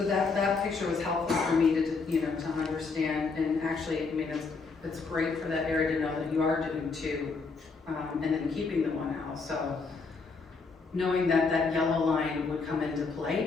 that picture was helpful for me to understand, and actually, it's great for that area to know that you are doing 2, and then keeping the 1 house, so knowing that that yellow line would come into play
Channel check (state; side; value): quieter; right; 4.5 dB